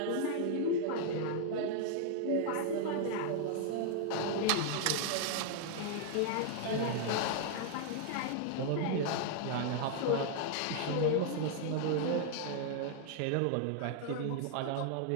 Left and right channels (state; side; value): different; both; correlation -0.01